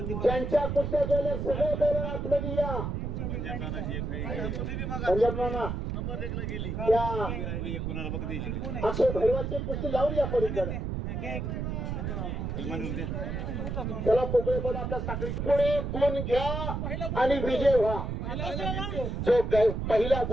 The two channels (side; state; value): right; noise; rumble, 3 dB below the sound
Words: ज्यांच्या कुस्त्या जोडल्या सगळे पैलवान आतमध्ये या. पंजाब नाना अक्षय भैरवाची कुस्ती लावून या पलीकडे. चला पोकळे बोला. आपल्या साखळी पुढे गुण घ्या आणि विजय व्हा. जो पहिला